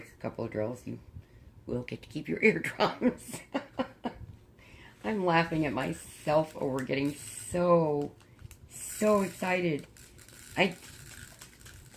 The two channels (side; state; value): both; identical; correlation 1.00